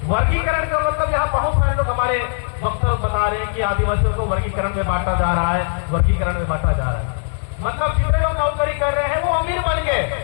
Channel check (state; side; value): silent; right; digital silence